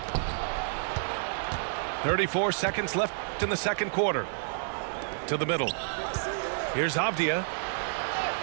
34 seconds left in the second quarter. To the middle. Here's Avdia.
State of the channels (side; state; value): left; silent; digital silence